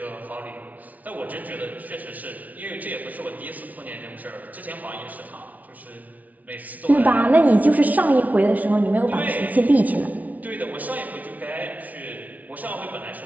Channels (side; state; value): left; late; 0.073 ms